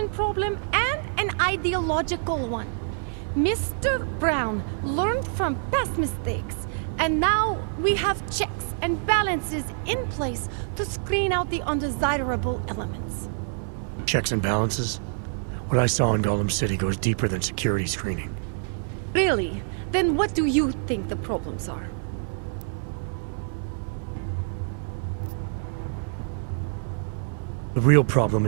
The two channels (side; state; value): left; silent; 56 dB below the other